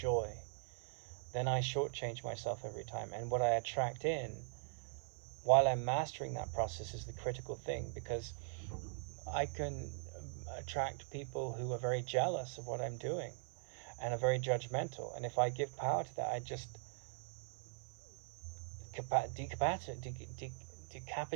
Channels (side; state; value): left; silent; 50 dB below the other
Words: then I shortchange myself every time. And what I attract in, while I'm mastering that process, is the critical thing, because I can attract people who are very jealous of what I'm doing and are very judgmental. And if I give power to that, I just